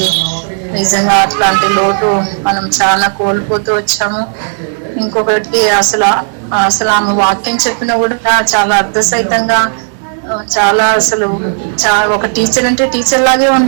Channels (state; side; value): silent; left; digital silence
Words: నిజంగా అట్లాంటి లోటు మనం చాలా కోల్పోతూ వచ్చాము. ఇంకొకటి అసలు అసలు ఆమె వాక్యం చెప్పినా కూడా చాలా అర్థసహితంగా చాలా అసలు ఒక టీచర్ అంటే టీచర్ లాగే